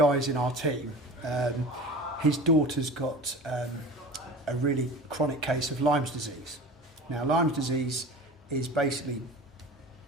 in our team, his daughter's got a really chronic case of Lyme's disease. Now, Lyme's disease is basically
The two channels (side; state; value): both; normal; correlation 0.36